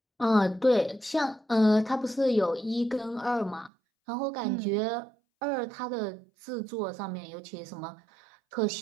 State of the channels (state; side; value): drops out; left; at 3.7 s